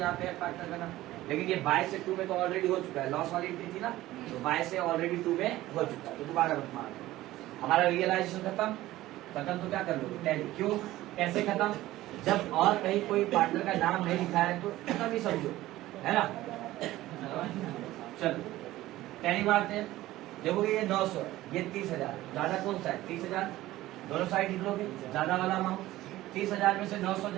पे है पार्टनर का नाम, लेकिन ये बाय से टू में तो ऑलरेडी हो चुका है। लॉस वाली एंट्री थी ना, तो बाय से ऑलरेडी टू में हो चुका है, तो दोबारा मत मार दो। हमारा रियलाइजेशन खत्म। तो क्या कर लोगे? टैली। क्यों? कैसे खत्म? जब और कहीं कोई पार्टनर का नाम नहीं लिखा है तो खत्म ही समझो, है ना। चलो टैली मारते हैं। देखोगे ये 900, ये 30,000। ज्यादा कौन सा है? 30,000। दोनों साइड लिख लोगे, ज्यादा वाला अमाउंट। 30,000 में से 900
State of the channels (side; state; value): left; quieter; 16.2 dB